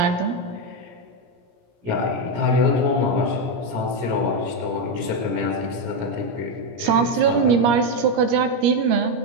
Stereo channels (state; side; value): late; left; 17 ms